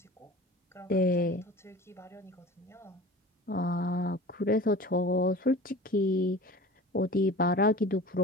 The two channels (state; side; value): normal; both; correlation 0.39